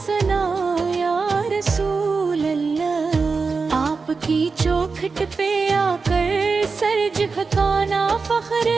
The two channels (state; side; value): quieter; left; 4.6 dB